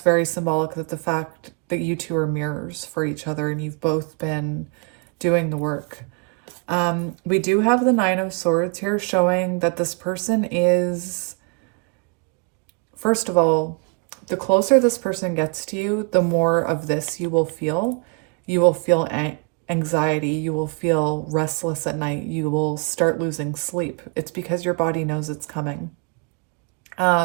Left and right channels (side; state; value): left; quieter; 34.6 dB